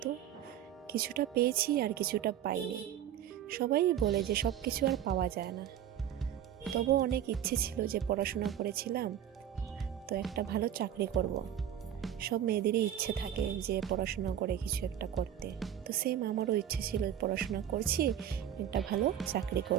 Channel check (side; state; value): left; quieter; 10.3 dB